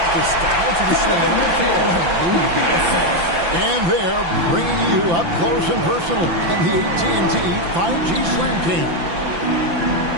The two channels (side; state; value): left; late; 5.9 ms